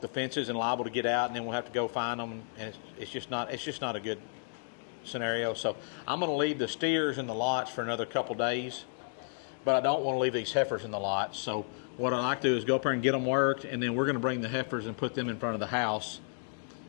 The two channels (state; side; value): silent; right; digital silence